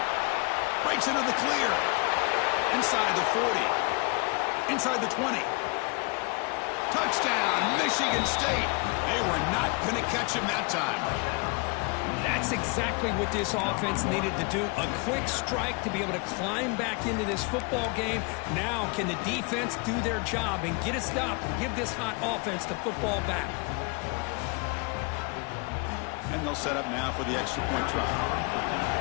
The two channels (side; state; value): right; quieter; 30.9 dB